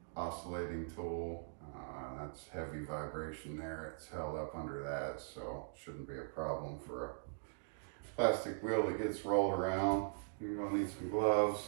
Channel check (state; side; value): silent; left; digital silence